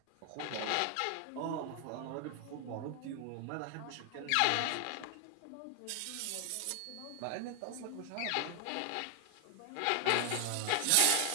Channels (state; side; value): different; both; correlation 0.00